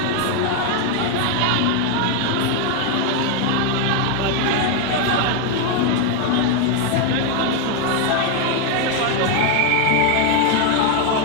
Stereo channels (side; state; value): both; different; correlation 0.01